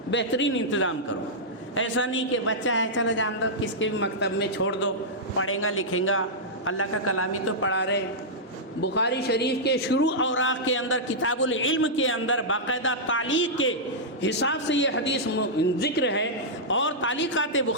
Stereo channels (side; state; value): both; normal; correlation -0.10